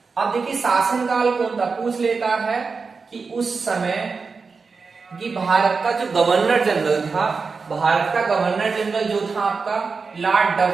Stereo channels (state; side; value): quieter; left; 4.7 dB